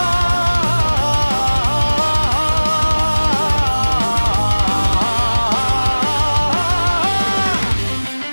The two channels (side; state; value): both; inverted; correlation -1.00